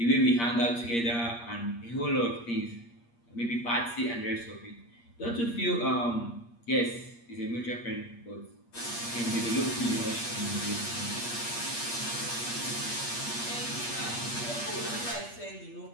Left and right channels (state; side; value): late; right; 8.5 ms